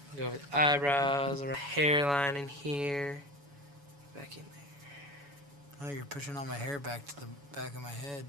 Go with eyebrows, around hairline in here. Back in there. Oh, you're pushing all my hair back to the back of my head,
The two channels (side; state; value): left; late; 7.1 ms